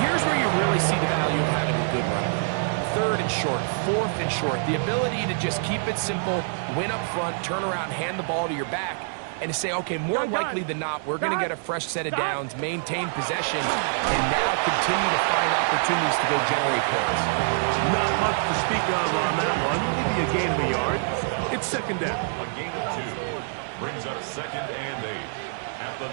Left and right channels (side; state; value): left; silent; 61 dB below the other